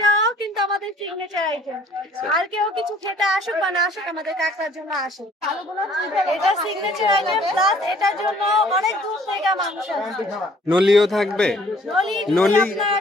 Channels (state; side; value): normal; both; correlation 0.57